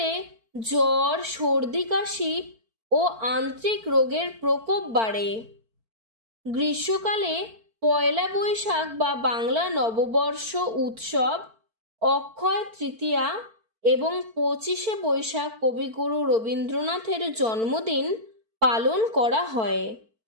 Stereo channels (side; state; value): left; late; 4.5 ms